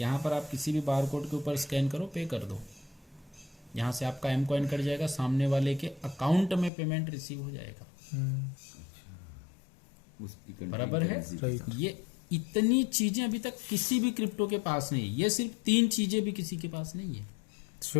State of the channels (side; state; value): right; drops out; at 6.7 s